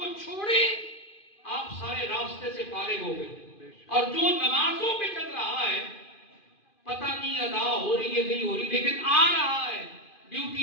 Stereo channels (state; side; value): late; right; 2.4 ms